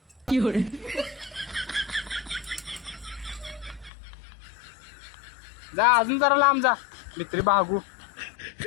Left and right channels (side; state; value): right; drops out; at 3.9 s